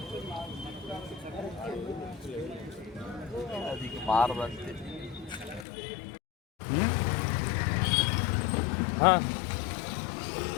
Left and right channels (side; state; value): right; drops out; at 5.7 s